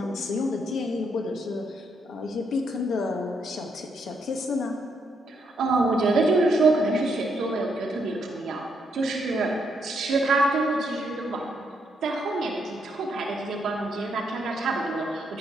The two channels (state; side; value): normal; both; correlation 0.76